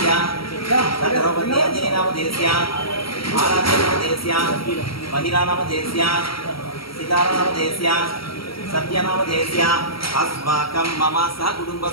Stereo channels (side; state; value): right; late; 0.75 ms